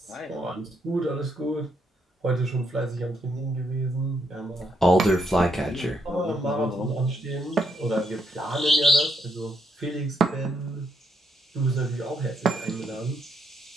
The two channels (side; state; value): both; normal; correlation 0.76